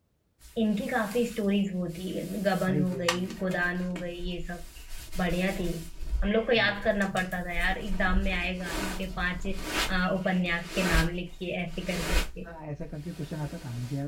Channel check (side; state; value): both; identical; correlation 1.00